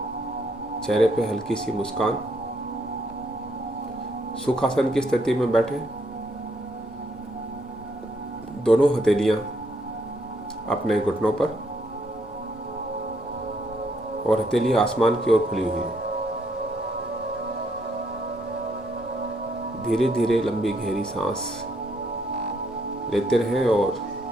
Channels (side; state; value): both; normal; correlation 0.72